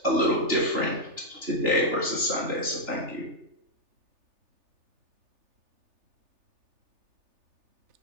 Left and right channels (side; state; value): left; late; 3.4 ms